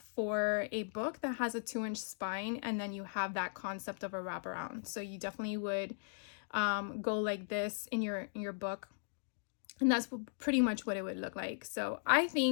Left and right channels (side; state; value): right; silent; digital silence